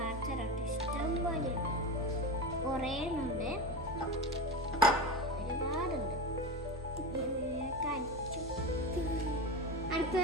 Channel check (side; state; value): both; normal; correlation 0.23